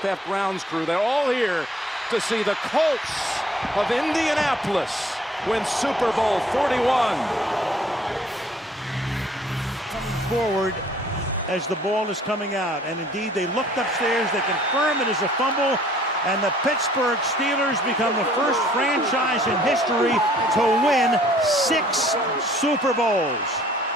grounds crew. They're all here to see the Colts of Indianapolis win Super Bowl 41. Coming forward as the ball is coming out. And indeed, they looked upstairs. They confirmed it is a fumble. And the Pittsburgh Steelers become the first franchise in history to win 6 Super Bowls.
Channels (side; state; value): both; normal; correlation 0.58